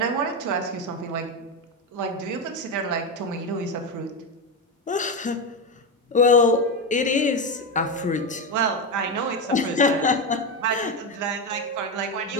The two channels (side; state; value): both; normal; correlation 0.13